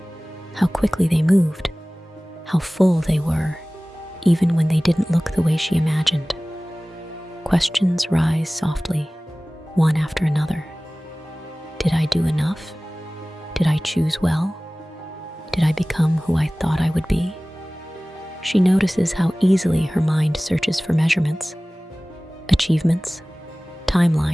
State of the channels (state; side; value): normal; both; correlation 0.98